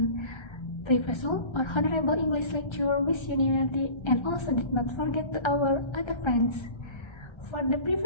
Professor or Honorable English lecturer with unanimity, and also did not forget to our other friends. For the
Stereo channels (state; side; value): late; right; 1.3 ms